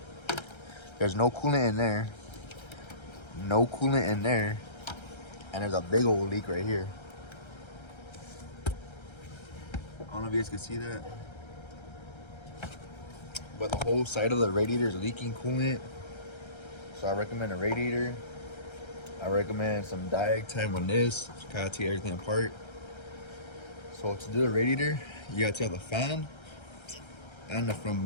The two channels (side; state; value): right; late; 1.3 ms